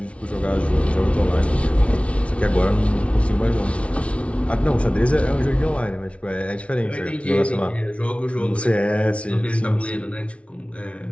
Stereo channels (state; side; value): late; right; 0.062 ms